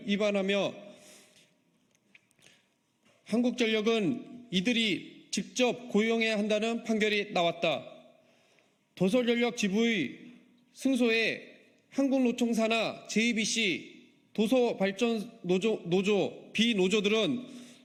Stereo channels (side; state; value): both; identical; correlation 1.00